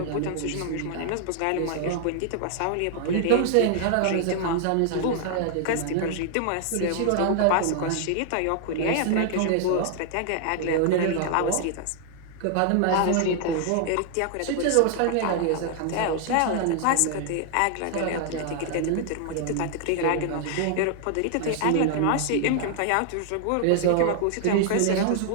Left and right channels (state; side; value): different; both; correlation 0.00